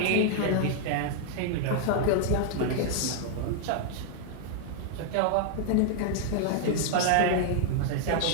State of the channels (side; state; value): both; different; correlation 0.00